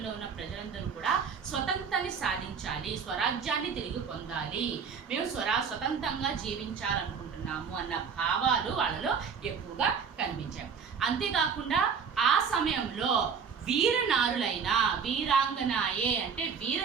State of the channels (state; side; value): quieter; left; 6.4 dB